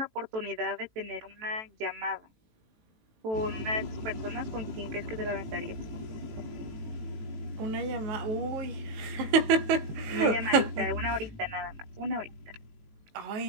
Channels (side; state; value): left; late; 18 ms